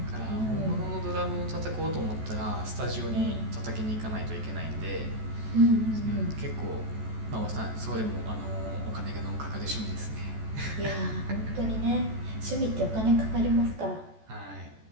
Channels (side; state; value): left; late; 14 ms